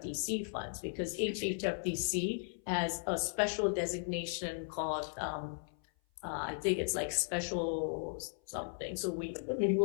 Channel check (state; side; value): silent; right; 54 dB below the other